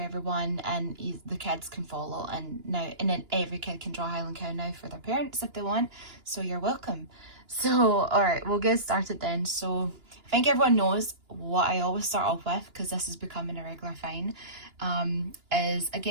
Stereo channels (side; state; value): left; late; 2.9 ms